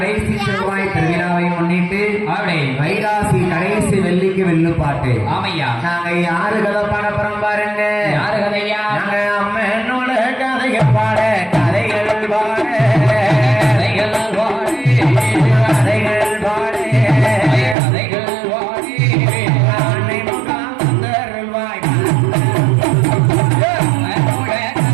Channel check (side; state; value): left; drops out; at 17.8 s